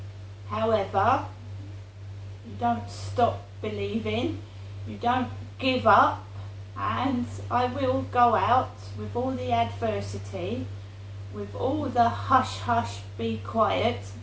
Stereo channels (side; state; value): both; identical; correlation 1.00